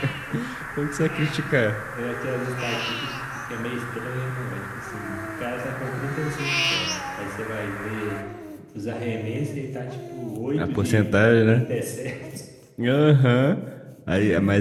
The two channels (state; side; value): identical; both; correlation 1.00